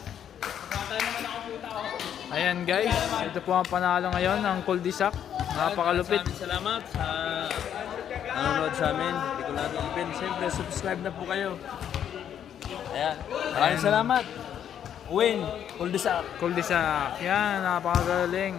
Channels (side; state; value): right; quieter; 9.4 dB